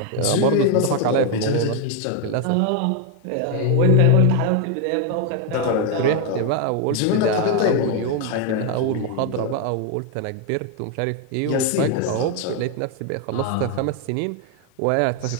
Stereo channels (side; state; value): both; different; correlation 0.01